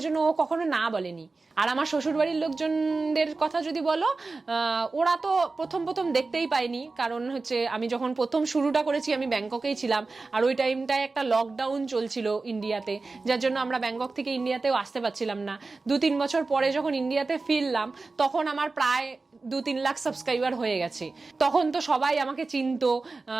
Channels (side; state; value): left; quieter; 3.7 dB